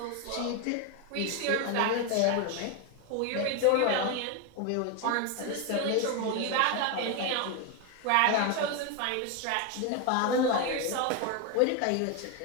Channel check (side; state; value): both; different; correlation 0.02